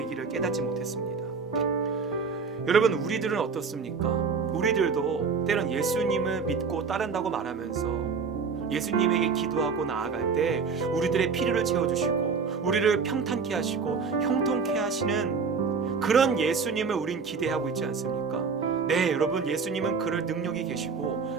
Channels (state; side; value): quieter; left; 5.2 dB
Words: 길을 깨닫지 못했습니다. 여러분, 우리들은 어떻습니까? 우리들도 때론 예수님을 믿고 따른다고 말하면서 예수님에게 기도하고 나아갈 때 우리들의 필요를 채워주시고 우리를 평탄케 하시고 형통케 하시는 그런 예수님을 우린 기대하고 있지 않습니까? 네, 여러분, 예수님은 그럴 능력이